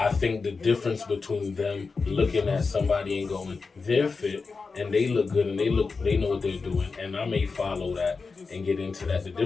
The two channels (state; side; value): quieter; right; 4.5 dB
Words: think the difference between them looking at somebody and going, they're fit and they look good and they know what they're doing, and I may follow that and get into that. The